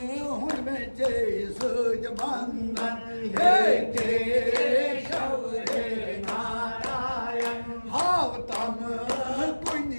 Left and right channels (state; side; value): inverted; both; correlation -1.00